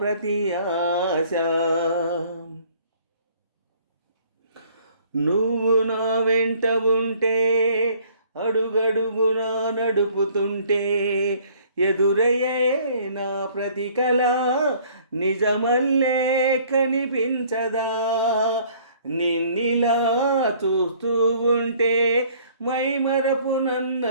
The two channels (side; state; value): both; inverted; correlation -0.58